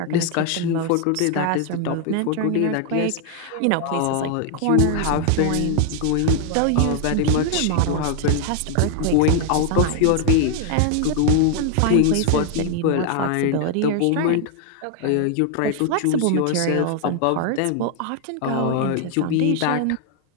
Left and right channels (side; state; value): both; different; correlation 0.00